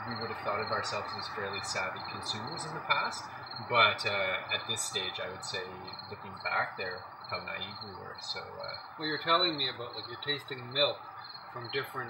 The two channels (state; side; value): identical; both; correlation 1.00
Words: we would have thought of ourselves as fairly savvy consumers in the past, but at this stage, I would say, looking back there, how naive we were. So well, you're telling me about, like, you're tasting milk from